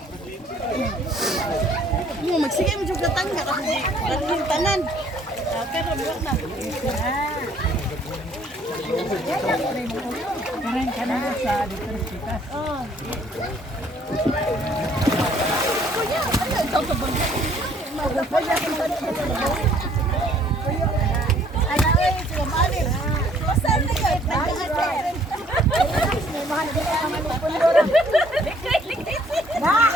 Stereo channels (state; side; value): normal; both; correlation 0.61